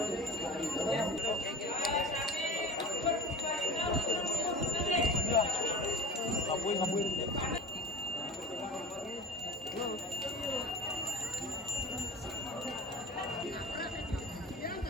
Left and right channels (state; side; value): normal; both; correlation 0.37